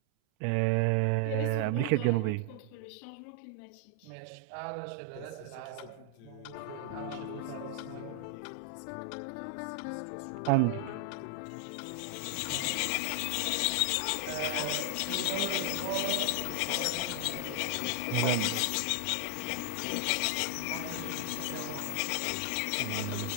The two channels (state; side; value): different; both; correlation 0.00